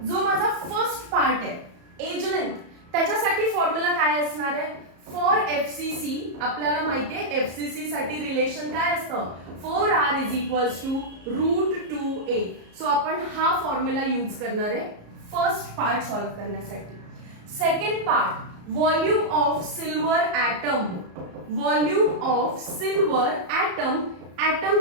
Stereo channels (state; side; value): late; left; 34 ms